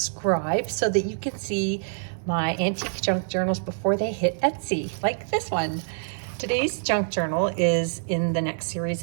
so that you can see my antique junk journals before they hit Etsy, like this one. Today's junk journal is in the next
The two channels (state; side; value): silent; left; 61 dB below the other